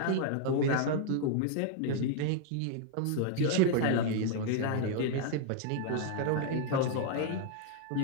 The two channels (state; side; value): different; both; correlation -0.01